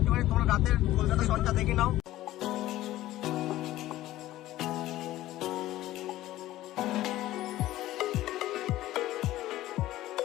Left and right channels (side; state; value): right; quieter; 15.2 dB